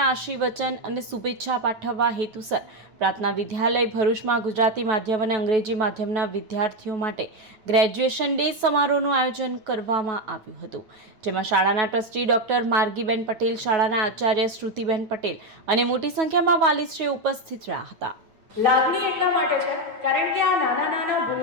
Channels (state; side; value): late; left; 9.3 ms